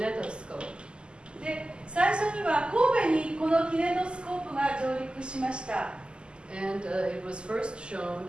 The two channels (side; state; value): left; late; 0.049 ms